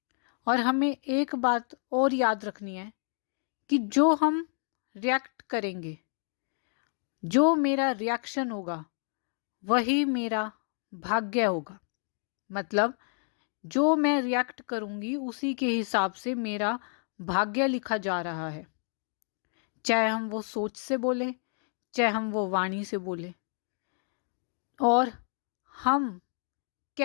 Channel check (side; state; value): right; silent; 57 dB below the other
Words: और हमें एक बात और याद रखनी है कि जो हम रिएक्ट करेंगे, जो मेरा रिएक्शन होगा वही मेरा भाग्य होगा। मतलब जो मैं रिएक्ट करूंगी उसी के हिसाब से मेरा भाग्य लिखा जा रहा है। चाहे हम वो सोच से बोलें, चाहे हम वो वाणी से बोलें। और हम